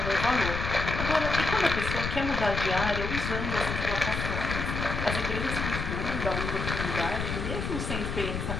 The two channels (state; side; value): noise; left; rumble, 3 dB below the sound